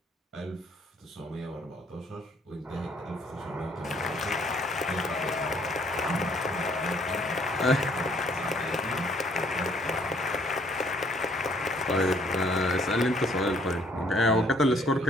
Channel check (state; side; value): normal; both; correlation 0.63